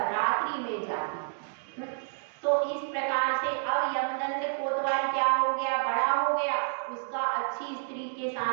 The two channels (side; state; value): left; silent; digital silence